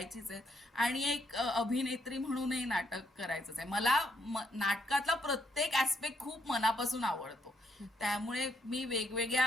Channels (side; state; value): both; normal; correlation 0.74